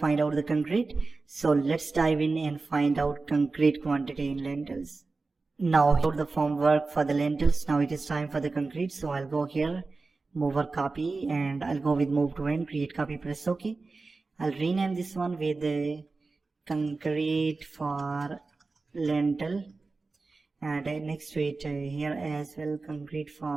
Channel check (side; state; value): left; quieter; 3.8 dB